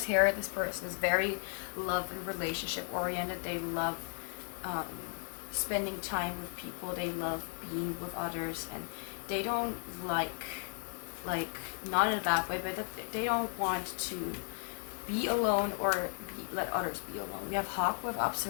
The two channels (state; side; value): silent; right; 54 dB below the other